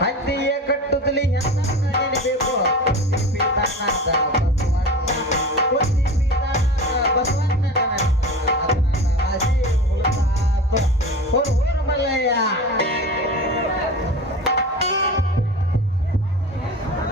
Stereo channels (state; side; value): normal; both; correlation 0.32